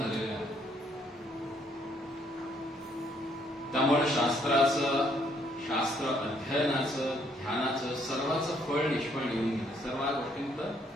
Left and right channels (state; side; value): normal; both; correlation 0.68